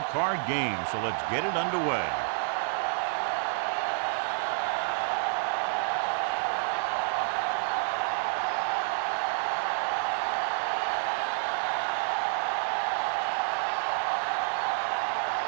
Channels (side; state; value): left; silent; 59 dB below the other